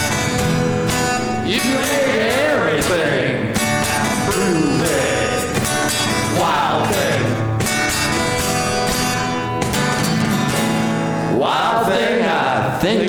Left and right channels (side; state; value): both; identical; correlation 1.00